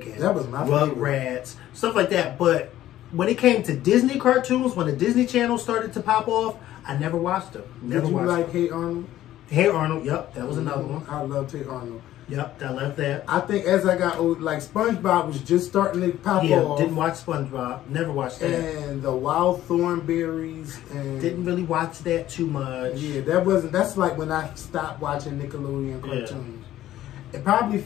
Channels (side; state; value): right; quieter; 13.5 dB